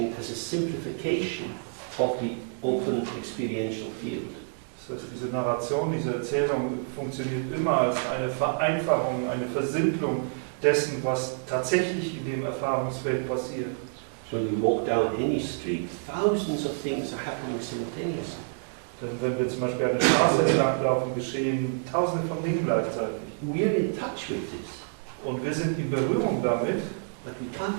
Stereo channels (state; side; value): silent; left; digital silence